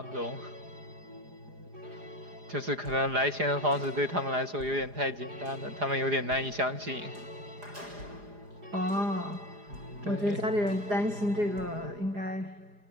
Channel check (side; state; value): left; late; 4.9 ms